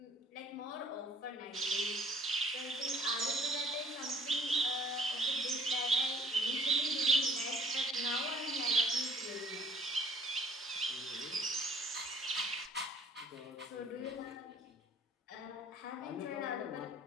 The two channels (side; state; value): both; normal; correlation 0.57